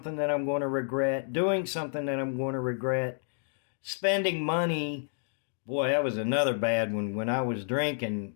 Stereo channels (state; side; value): silent; right; digital silence